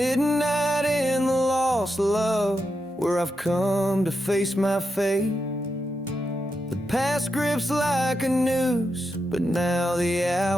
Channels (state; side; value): normal; both; correlation 0.86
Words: in the lost love, where I've come to face my fate. The past grips like a noose, but now the